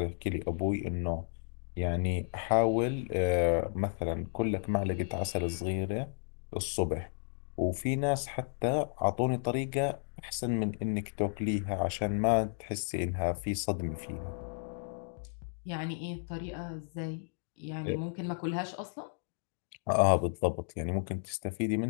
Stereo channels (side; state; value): right; silent; digital silence